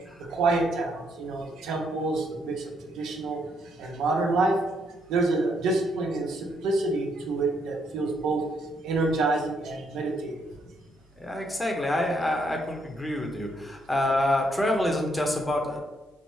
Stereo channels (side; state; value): both; normal; correlation 0.74